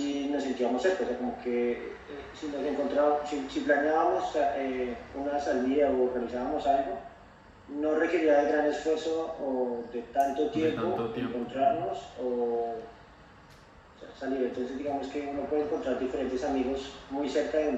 nos sentíamos cerca, o sea, como que si nos encontrábamos, si planeábamos una salida o organizábamos algo, no requería de gran esfuerzo o de tanto tiempo encontrarnos o sea, salir. Entonces digamos que uno puede encontrar diferentes amigos muy cerca de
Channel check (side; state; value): both; identical; correlation 1.00